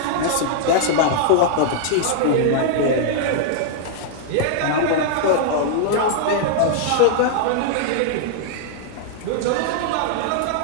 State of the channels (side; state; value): both; different; correlation -0.01